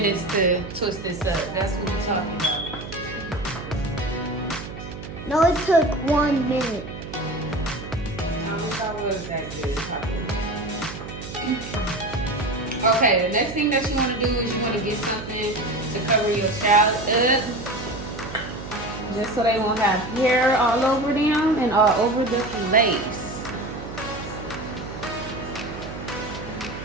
to twist this up. That's what we're talking about. No, it took 1 minute. I wish I was that good. Okay, the next thing that you want to do is you want to get something to cover your child up, just so they won't have hair all over them and all over the lace.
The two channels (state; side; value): noise; right; hum, 11 dB below the sound